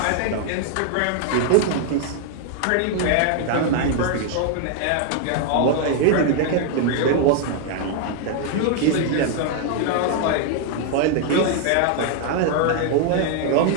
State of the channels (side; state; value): both; different; correlation 0.00